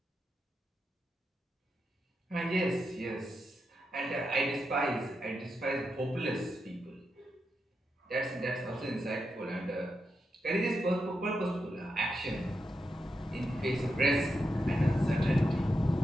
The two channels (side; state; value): both; normal; correlation 0.86